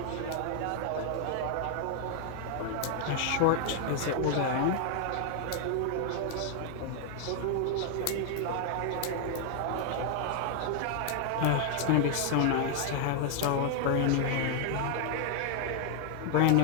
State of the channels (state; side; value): different; both; correlation 0.00